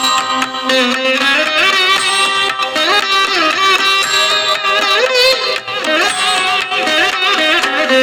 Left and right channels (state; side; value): identical; both; correlation 1.00